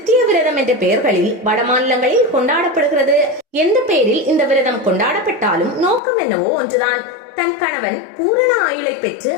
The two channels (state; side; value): drops out; right; at 6.0 s